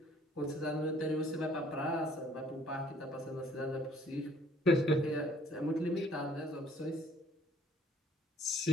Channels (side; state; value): both; normal; correlation 0.58